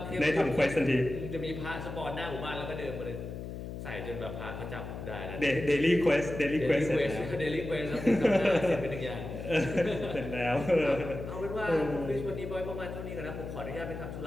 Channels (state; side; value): noise; left; hum, 8 dB below the sound